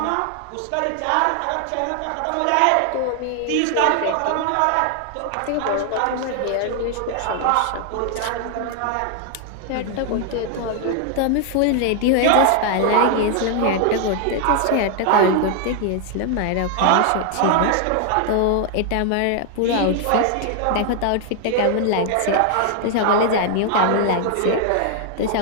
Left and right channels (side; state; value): both; different; correlation 0.00